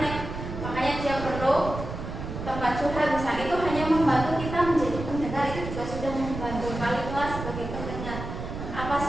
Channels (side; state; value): right; noise; rumble, 7 dB below the sound